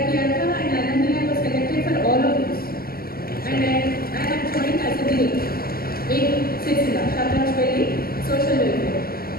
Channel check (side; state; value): right; late; 0.43 ms